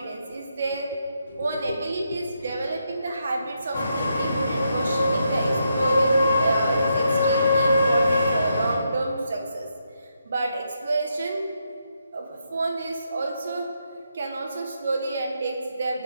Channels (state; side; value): inverted; both; correlation -0.80